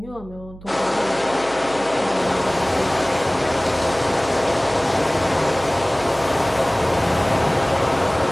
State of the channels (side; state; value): right; noise; hum, 18 dB below the sound